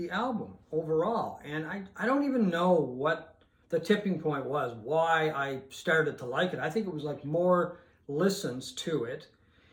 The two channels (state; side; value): identical; both; correlation 1.00